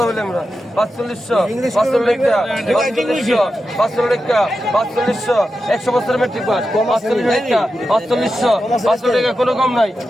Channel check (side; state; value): both; normal; correlation 0.90